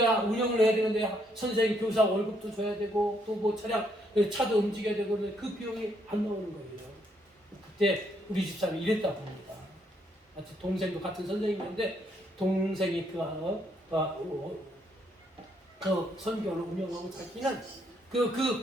운영을 해야 되는데 선생님, 교사 월급도 줘야 되고 또 뭐 차도 움직여야 되고 그 비용이 안 나오는 거예요. 그때 우리 집사람이 이랬다고 합니다. 마치 동생도 같은 선생님인데 동생이 그 선교원을 운영하고 자기는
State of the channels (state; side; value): normal; both; correlation 0.72